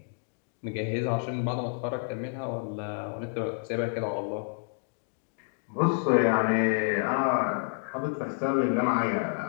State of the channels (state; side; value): silent; right; 58 dB below the other